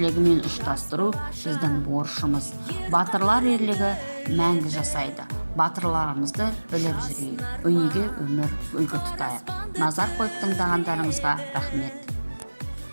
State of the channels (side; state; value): both; inverted; correlation -1.00